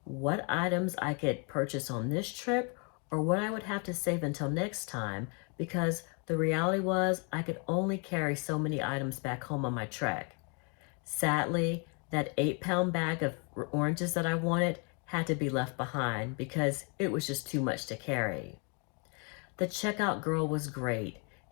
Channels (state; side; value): quieter; right; 35.8 dB